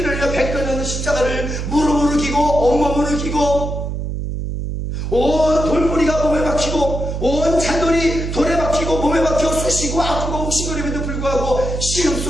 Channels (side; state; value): right; noise; hum, 4 dB below the sound